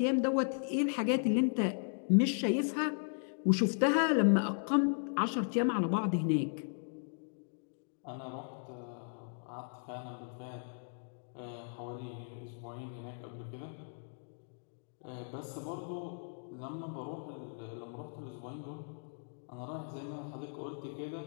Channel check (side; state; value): right; silent; digital silence